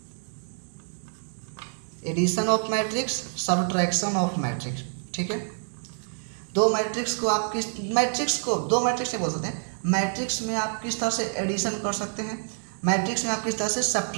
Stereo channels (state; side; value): silent; left; digital silence